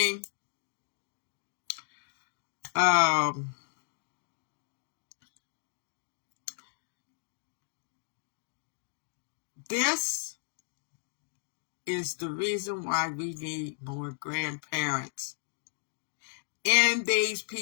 this is the reason why we need more grandparents in these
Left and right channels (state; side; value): silent; right; digital silence